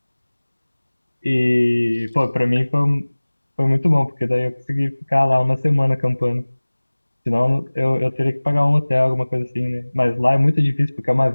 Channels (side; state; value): both; inverted; correlation -1.00